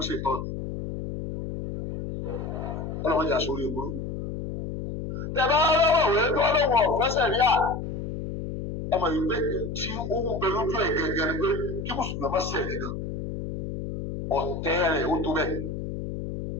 ṣe tọ́nu. Ọlọ́wọ́n jà sórí ìgboro. Tẹ́ bá rọ́wọ́ wé tó lóun ọ̀fẹ́ sàríà ẹ mọ̀ ìgbé tí ó ń bẹ lójú ẹ̀ gẹ́gẹ́ ni pé kí mùsùlùmí má ṣẹ̀ gẹ́gẹ́ ọ̀tẹ́ rẹ̀ ó tó bẹ́ẹ̀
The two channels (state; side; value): noise; left; hum, 6 dB below the sound